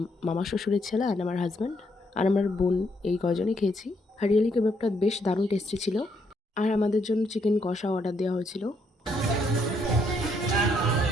মামা শ্বশুরের ছেলে অ্যান্ড আমার হাজব্যান্ড আর আমার বোন এই কজনই খেয়েছি। হারিয়ালি কাবাবটা বেশ দারুণ টেস্টি ছিল। আর আমাদের জন্য চিকেন কষা অর্ডার দেওয়া হয়েছিল।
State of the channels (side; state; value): both; normal; correlation 0.73